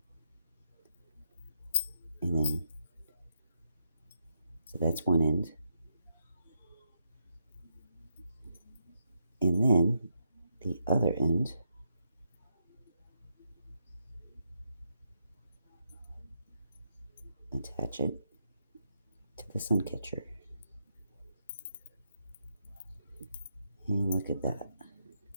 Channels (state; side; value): inverted; both; correlation -0.80